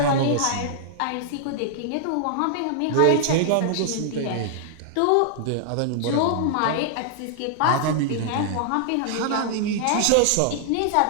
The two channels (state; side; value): different; both; correlation -0.01